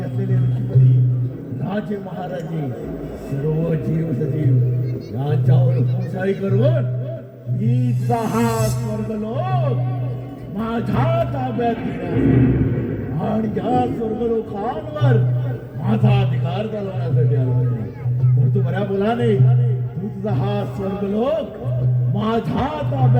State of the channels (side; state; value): both; identical; correlation 1.00